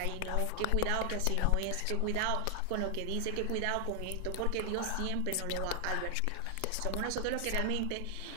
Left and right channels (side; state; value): both; different; correlation 0.00